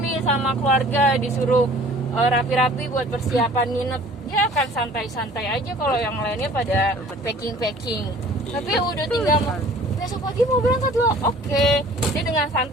sama keluarga, disuruh rapi-rapi buat persiapan nginep, dia akan santai-santai aja kalau yang lainnya pada packing. Tapi udah tinggal besok pagi mau berangkat loh, oke. Dia dengan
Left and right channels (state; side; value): normal; both; correlation 0.50